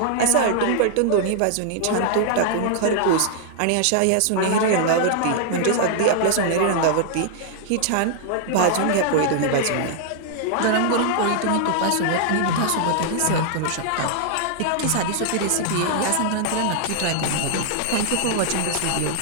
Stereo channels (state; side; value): different; both; correlation -0.01